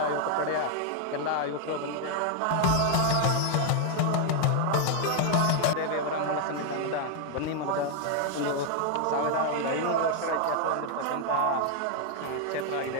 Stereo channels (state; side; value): different; both; correlation 0.00